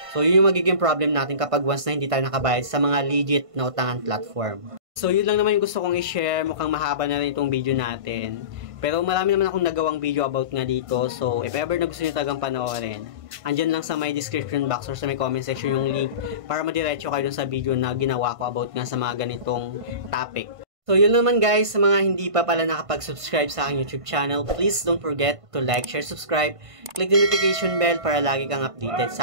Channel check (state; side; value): late; left; 1.5 ms